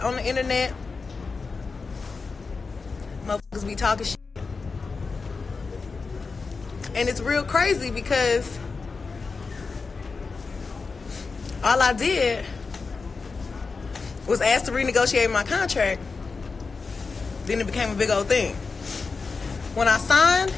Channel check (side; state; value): right; quieter; 4.5 dB